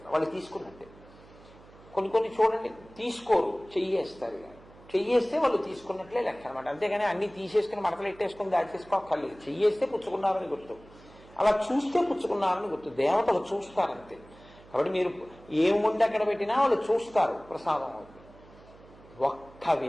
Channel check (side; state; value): right; noise; hum, 23 dB below the sound